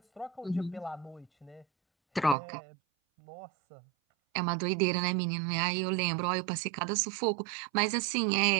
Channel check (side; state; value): left; drops out; at 2.4 s